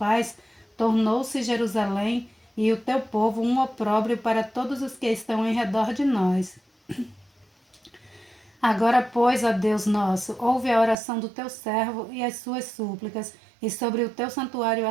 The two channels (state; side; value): drops out; left; at 11.0 s